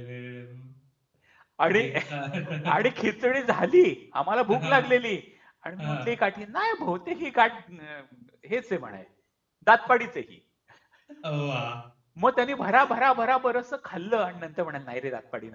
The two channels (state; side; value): identical; both; correlation 1.00